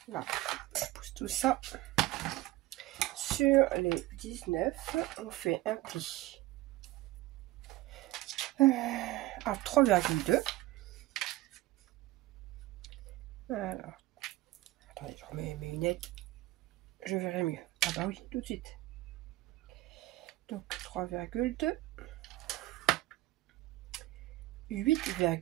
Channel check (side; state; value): left; quieter; 17.4 dB